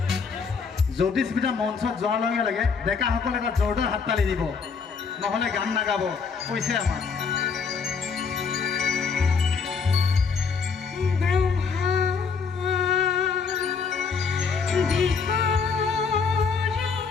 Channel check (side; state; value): right; quieter; 5.5 dB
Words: জ্যোতিস্মিতা মঞ্চত যোৱাৰ লগে লগে ডেকাসকলে এটা জোৰদাৰ হাততালি দিব নহ'লে গান নাগাব কৈছে আমাক